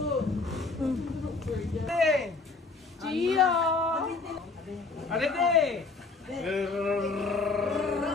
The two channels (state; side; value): quieter; right; 4.0 dB